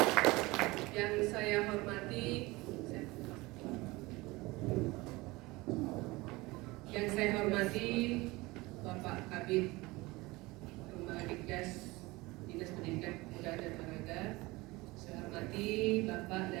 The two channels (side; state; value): left; quieter; 21.9 dB